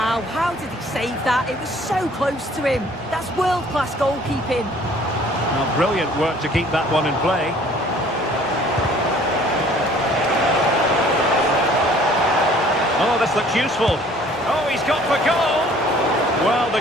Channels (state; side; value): normal; both; correlation 0.54